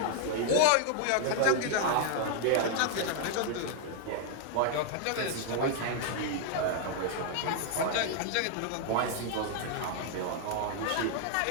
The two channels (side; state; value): both; different; correlation 0.00